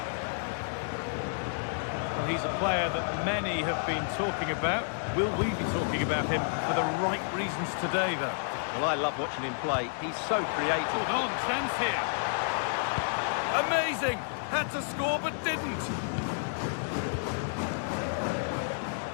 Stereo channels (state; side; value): silent; right; digital silence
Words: Well, he's a player that many have been talking about. Will we be talking about him for the right reasons today, though? Well, I love watching him play. He's so creative. Hold on, chance here. Amazing! Had to score but didn't.